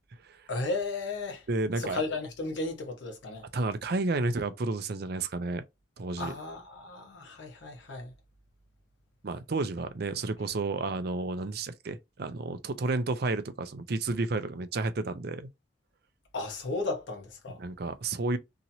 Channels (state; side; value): normal; both; correlation 0.36